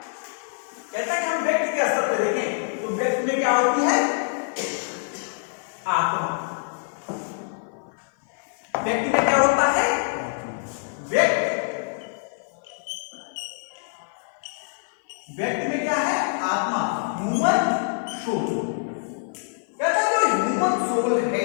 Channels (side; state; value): right; silent; 56 dB below the other